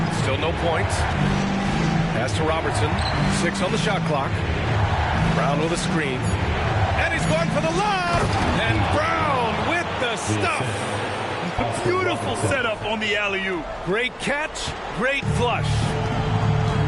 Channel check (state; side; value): identical; both; correlation 1.00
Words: Still no points. Pass to Robertson. 6 on the shot clock. Brown with a screen. And he's going for the lob. And Brown with the stuff. A beautiful setup on the alley-oop. Great catch. Great flush.